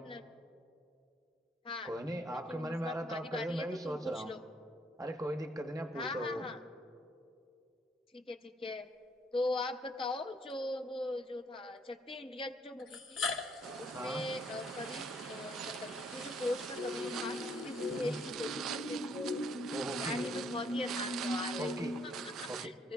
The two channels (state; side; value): normal; both; correlation 0.67